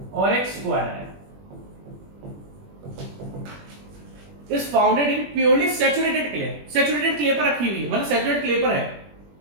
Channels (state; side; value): late; left; 21 ms